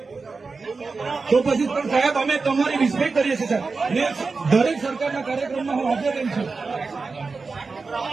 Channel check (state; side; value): quieter; left; 4.3 dB